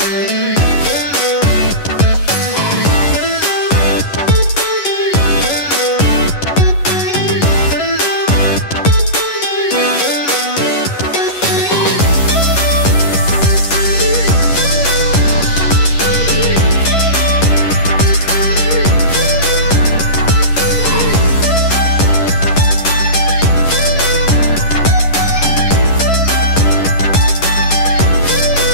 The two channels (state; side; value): late; right; 11 ms